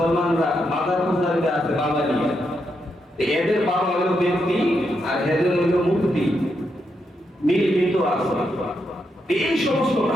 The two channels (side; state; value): both; normal; correlation 0.82